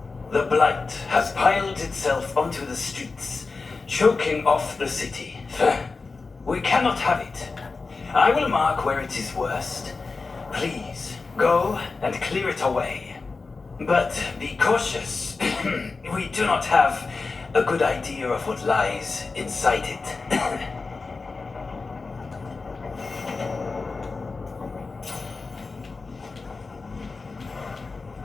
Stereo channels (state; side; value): quieter; right; 4.1 dB